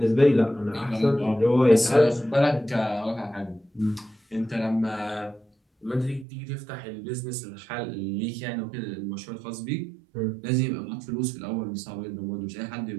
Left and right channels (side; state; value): left; drops out; at 6.2 s